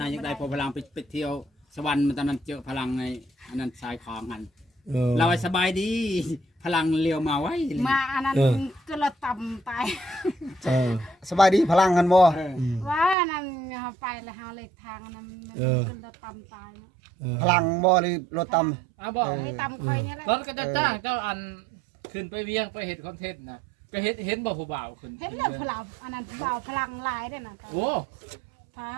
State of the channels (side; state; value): left; drops out; at 13.2 s